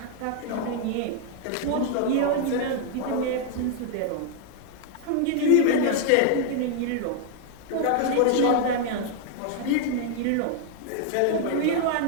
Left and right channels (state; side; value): different; both; correlation 0.00